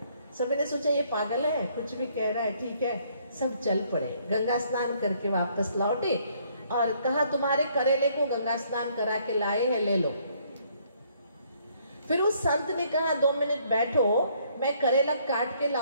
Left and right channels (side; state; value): both; inverted; correlation -0.66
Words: सभी ने सोचा ये पागल है, कुछ भी कह रहा है, ठीक है। सब चल पड़े, गंगा स्नान करके वापस लौटे और कहा तुम्हारे करेले को गंगा स्नान करा के लाए हैं, ले लो। फिर उस संत ने कहा 2 मिनट बैठो, मैं करेला काट के